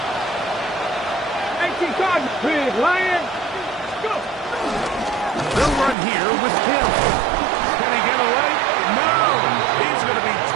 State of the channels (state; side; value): drops out; left; at 6.0 s